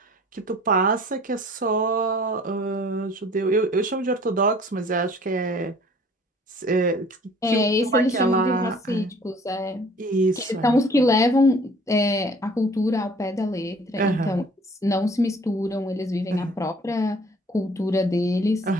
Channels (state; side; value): normal; both; correlation 0.52